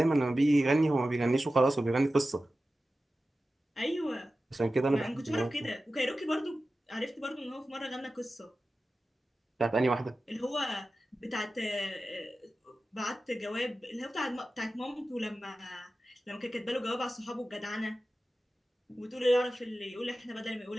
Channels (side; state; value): both; normal; correlation 0.94